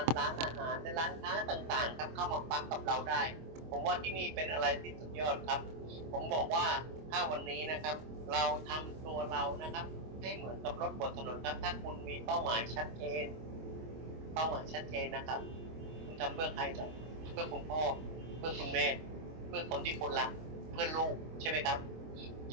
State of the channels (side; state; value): left; late; 25 ms